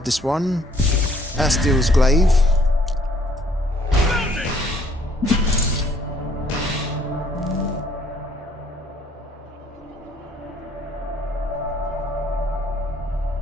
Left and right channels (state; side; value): normal; both; correlation 0.63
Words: this one. Astil's Glaive.